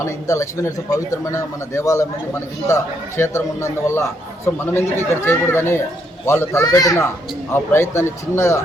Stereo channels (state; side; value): normal; both; correlation 0.74